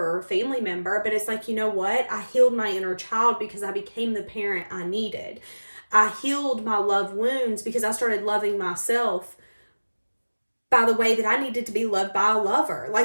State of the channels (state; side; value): inverted; both; correlation -1.00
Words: a family member, but it's like, you know what? I healed my inner child because I became the parent I needed. I healed my love wounds because I started loving myself by the way that I needed to be loved by a lover.